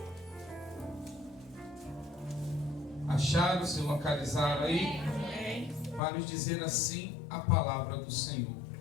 Acharam? Se localizaram aí? Amém. Vai nos dizer assim a palavra do Senhor.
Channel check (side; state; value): right; drops out; at 6.0 s